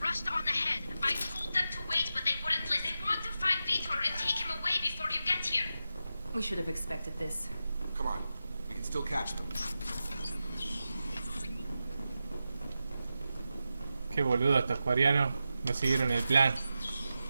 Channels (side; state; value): both; inverted; correlation -0.91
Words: rushed on ahead. I told them to wait, but they wouldn't listen. They want to find Vitor and take him away before you get here. We should have expected this. Come on. We can still catch them. Qué boludo estos coreanos. No siguieron el plan.